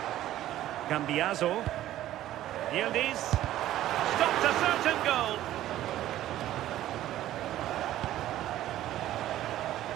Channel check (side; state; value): left; quieter; 13.5 dB